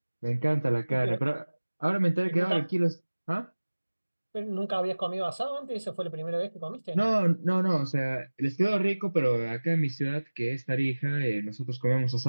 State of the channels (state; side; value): inverted; both; correlation -1.00